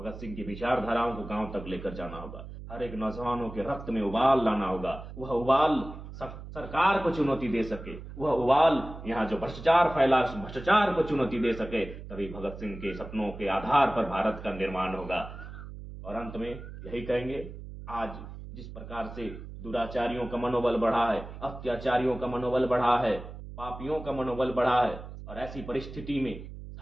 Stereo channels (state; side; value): noise; right; hum, 12 dB below the sound